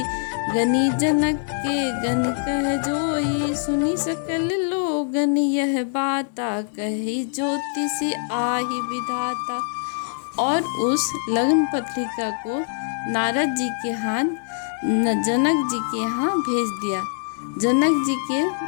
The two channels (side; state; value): right; silent; 63 dB below the other